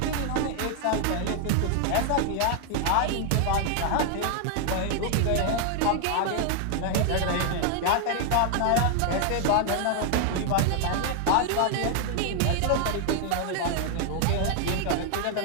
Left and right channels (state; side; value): different; both; correlation 0.00